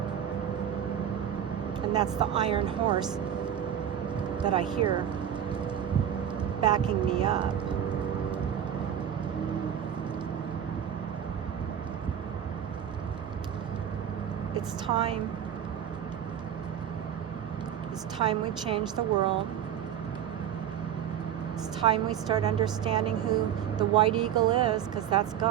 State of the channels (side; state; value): left; quieter; 9.7 dB